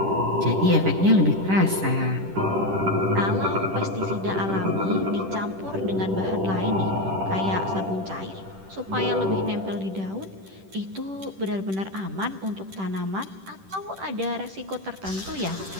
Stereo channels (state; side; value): late; left; 10 ms